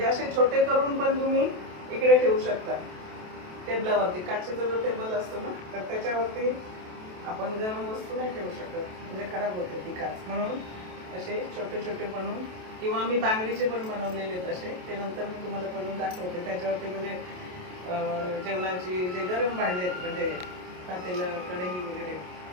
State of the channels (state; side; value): late; left; 28 ms